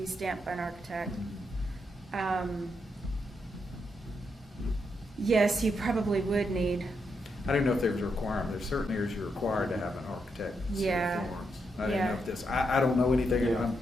stamped by an architect. Yes, you probably would need, I didn't know if there was a requirement. There's certain areas you're required to have an architect in the city of Yeah. Florence. I didn't know Yeah. if this, I don't know anything, Yeah.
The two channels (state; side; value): normal; both; correlation 0.81